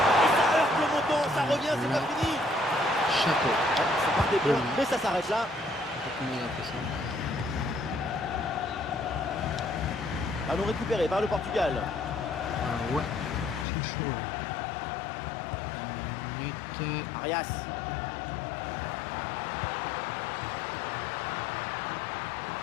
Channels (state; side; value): drops out; right; at 13.7 s